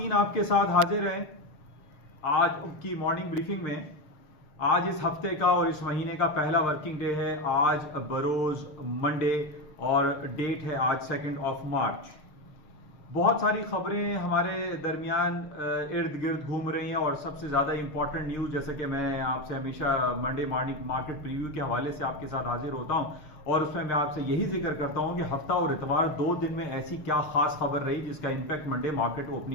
आपके साथ हाजिर हैं आज की मॉर्निंग ब्रीफिंग में। आज इस हफ्ते का और इस महीने का पहला वर्किंग डे है। आज बरोज मंडे और डेट है आज 2 मार्च। बहुत सारी खबरें हमारे दरमियान इर्द गिर्द घूम रही हैं और सबसे ज़्यादा इंपॉर्टेंट न्यूज़, जैसे कि मैं आपसे हमेशा मंडे मॉर्निंग मार्केट प्रीव्यू के हवाले से आपके साथ हाजिर होता हूं और उसमें मैं आपसे यही जिक्र करता हूं कि हफ्ता और इतवार 2 दिन में ऐसी क्या खास खबर रही जिसका इंपैक्ट मंडे मार्केट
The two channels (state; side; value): late; right; 6.5 ms